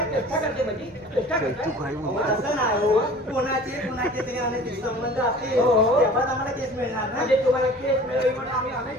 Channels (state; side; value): normal; both; correlation 0.44